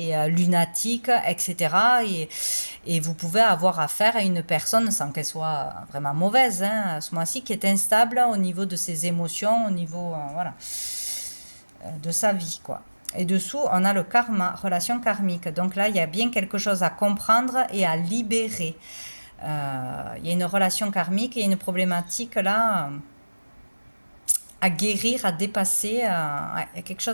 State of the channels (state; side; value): inverted; both; correlation -1.00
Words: lunatiques, etc. Et vous pouvez avoir affaire à une personne, sans qu'elle soit vraiment mauvaise, hein, à ce mois-ci, qui est instable au niveau de ses émotions, au niveau voilà, de sa vie, quoi. Et dessous, on a le karma, relation karmique. Donc là, il y a bien quelque chose à comprendre et à libérer. Il y a une relation karmique et une problématique là à guérir, à dépasser. Il y a quelque